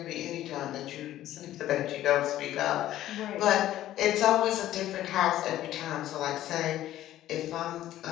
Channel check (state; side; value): quieter; right; 13.5 dB